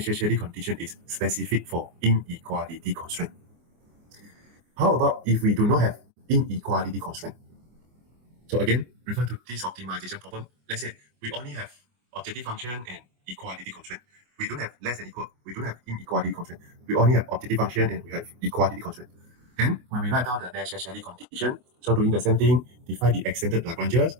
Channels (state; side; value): late; left; 24 ms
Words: condition is specific for inequality constraint. How about if we do not have inequality constraint? So again, refer to this optimization problem. Let's say we only have objective function and equality constraint. We don't have less than equal. We don't have inequality constraint. We only have objective function and we have equality constraint. And when we write down the necessary condition, so doing the same thing, define the extended Lagranges,